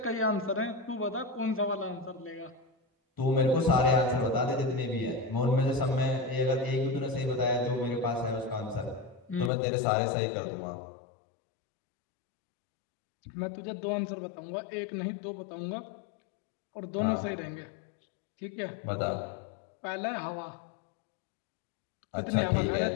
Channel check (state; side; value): drops out; right; at 9.5 s